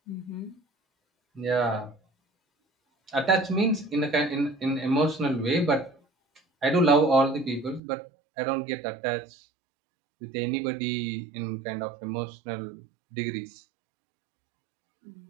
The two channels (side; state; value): left; drops out; at 7.8 s